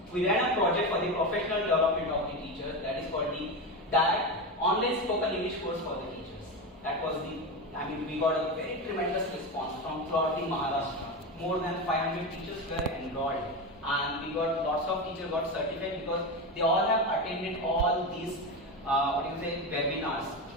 We ran a project for the professional development of the teacher, that is called the DIET, online spoken English course for the teachers. That was we got a very tremendous response from throughout the Maharashtra. More than 500 teachers were enrolled, and we got lots of teachers got certified because they all have attended all these webinars.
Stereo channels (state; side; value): normal; both; correlation 0.18